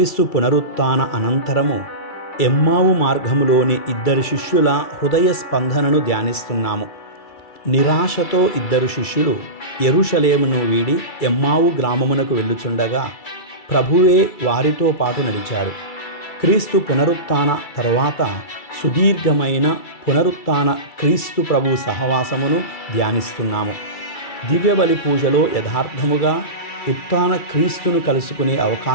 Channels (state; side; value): late; right; 2.3 ms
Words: పునరుత్థాన అనంతరము ఎమ్మావు మార్గములోని ఇద్దరు శిష్యుల హృదయ స్పందనను ధ్యానిస్తున్నాము. నిరాశతో ఇద్దరు శిష్యులు యెరూషలేమును వీడి ఎమ్మావు గ్రామమునకు వెళ్ళుచుండగా ప్రభువే వారితో పాటు నడిచాడు. క్రీస్తు పునరుత్థాన తరువాత సుదీర్ఘమైన పునరుత్థాన క్రీస్తు ప్రభు సహవాసమును ధ్యానిస్తున్నాము. దివ్యబలి పూజలో యథార్థముగా ఉత్థాన క్రీస్తును కలుసుకునే